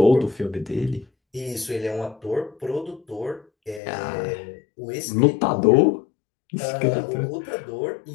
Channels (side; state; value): right; drops out; at 3.8 s